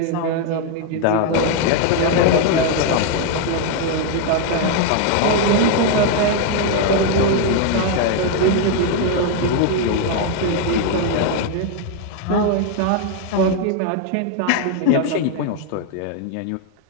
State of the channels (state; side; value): different; both; correlation 0.00